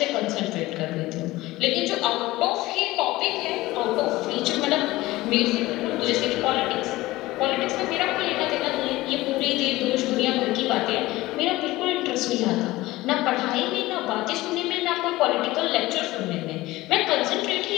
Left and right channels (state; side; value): quieter; right; 18.5 dB